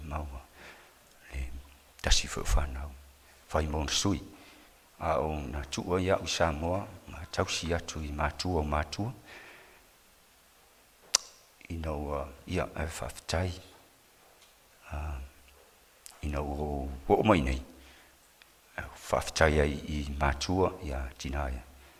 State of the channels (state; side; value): identical; both; correlation 1.00